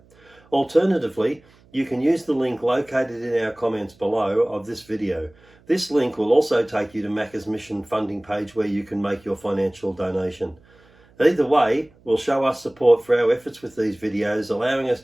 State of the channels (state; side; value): noise; right; hum, 30 dB below the sound